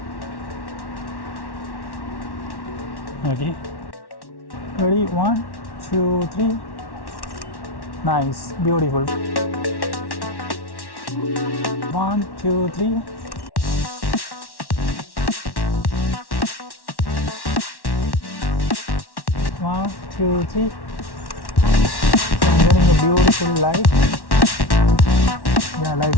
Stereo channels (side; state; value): right; late; 1.1 ms